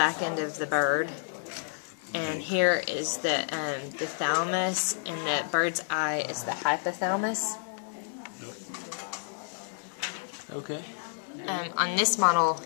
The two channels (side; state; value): right; silent; 58 dB below the other